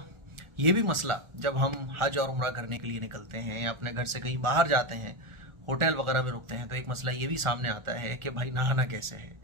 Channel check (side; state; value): left; late; 1.4 ms